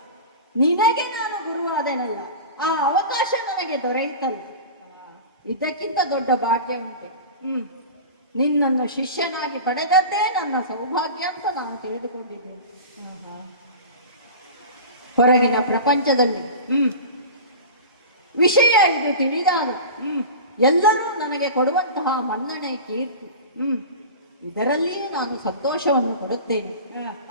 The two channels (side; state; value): both; inverted; correlation -0.33